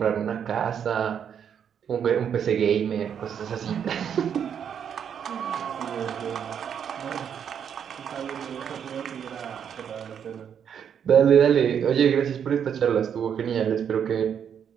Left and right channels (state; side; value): quieter; left; 8.2 dB